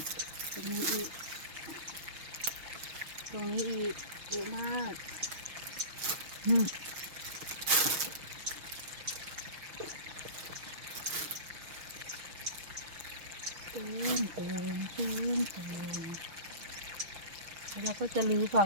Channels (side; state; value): left; late; 6.2 ms